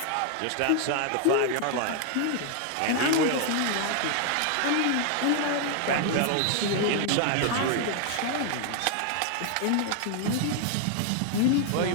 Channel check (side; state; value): both; different; correlation 0.00